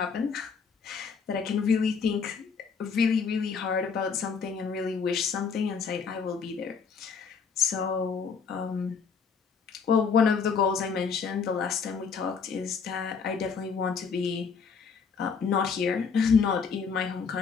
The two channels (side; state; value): right; quieter; 5.8 dB